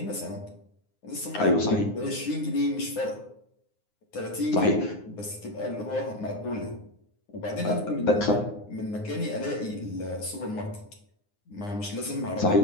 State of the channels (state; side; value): late; right; 9.7 ms